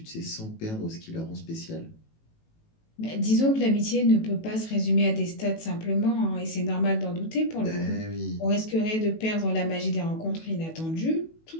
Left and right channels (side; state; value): right; late; 18 ms